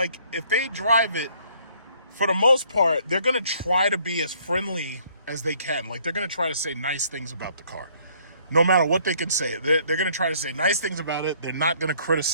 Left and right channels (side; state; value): both; inverted; correlation -0.62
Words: if they drive it, for the most part, they're gonna try to be as friendly as they can. Like, they're gonna try to say nice things about the car. No matter what they can say, they're going to try to say nice things about it. They're not going to